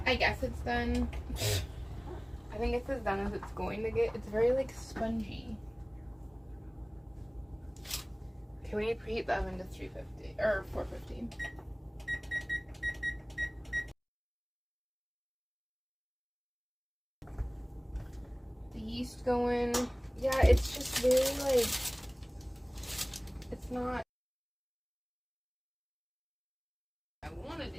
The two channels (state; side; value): identical; both; correlation 1.00